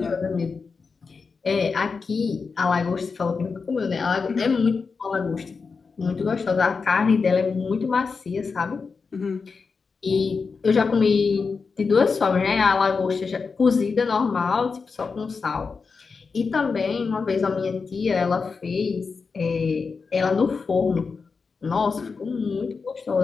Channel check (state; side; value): quieter; right; 4.9 dB